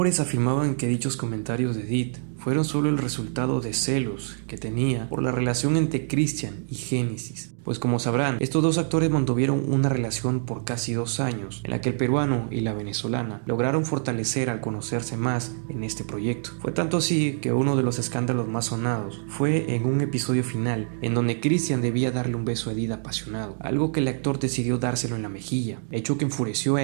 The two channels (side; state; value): left; silent; digital silence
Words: afirmaban que dichos comentarios de Edith fueron solo el resultado de celos que tenía por la relación entre Christian y Génesis. Pues como sabrán, estos dos actores mantuvieron una relación por casi 2 años, en la que el peruano y la venezolana lograron fortalecer al conocerse más en este proyecto. Fue tanto así que uno de los escándalos más sonados fue en un episodio final, en donde Christian debía darle un beso a Edith apasionado, algo que el actor decidió dárselo en la mejilla, hecho que enfureció a